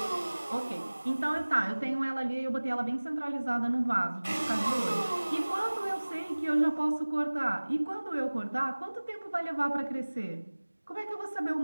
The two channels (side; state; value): both; inverted; correlation -1.00